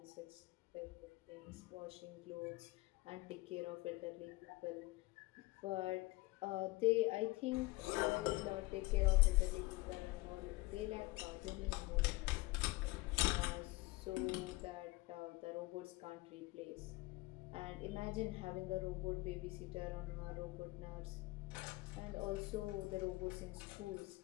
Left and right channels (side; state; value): right; quieter; 21.4 dB